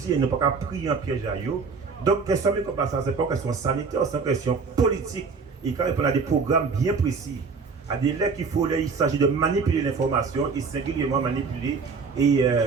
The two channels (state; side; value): quieter; left; 5.0 dB